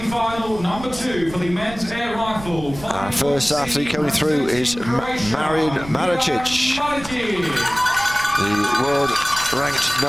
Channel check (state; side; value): noise; right; rumble, 14 dB below the sound